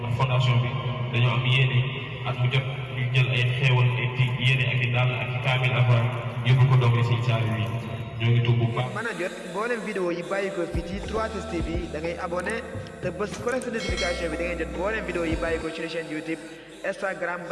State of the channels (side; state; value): both; identical; correlation 1.00